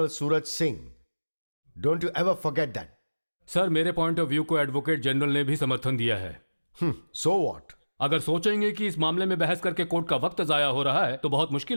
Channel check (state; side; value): inverted; both; correlation -1.00